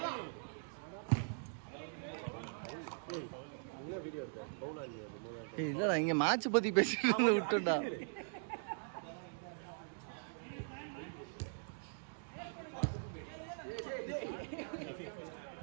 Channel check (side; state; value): left; silent; digital silence